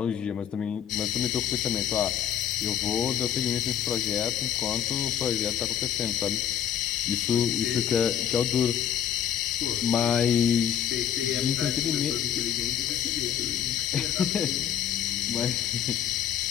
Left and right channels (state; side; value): quieter; right; 9.5 dB